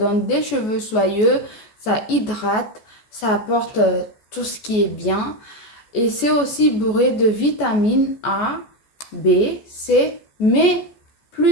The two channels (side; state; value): right; late; 14 ms